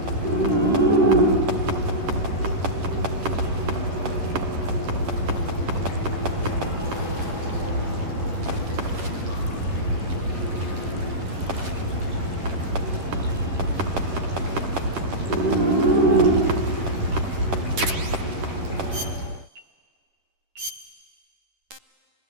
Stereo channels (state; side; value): late; left; 10 ms